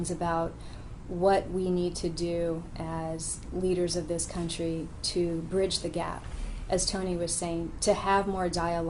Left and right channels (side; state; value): both; identical; correlation 1.00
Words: about what we need to do as leaders of this country to bridge the gap, as Tony was saying, to have more